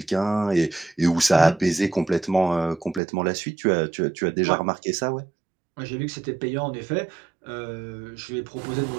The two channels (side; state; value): left; drops out; at 3.0 s